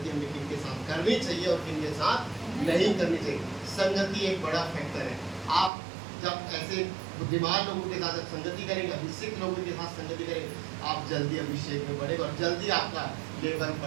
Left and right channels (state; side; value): drops out; left; at 5.7 s